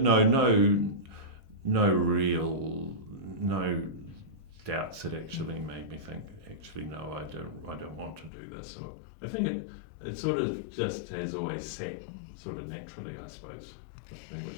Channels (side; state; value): right; drops out; at 8.3 s